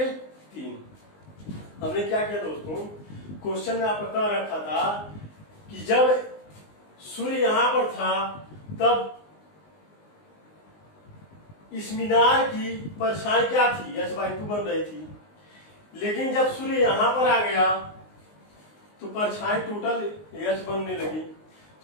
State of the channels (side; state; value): right; late; 19 ms